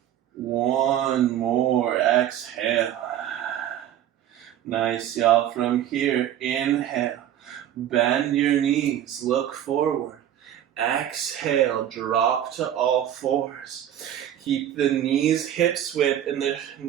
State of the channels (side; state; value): left; quieter; 11.1 dB